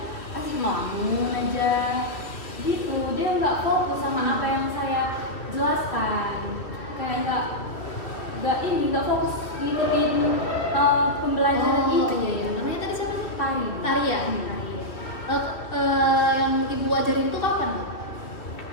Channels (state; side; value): late; right; 2.5 ms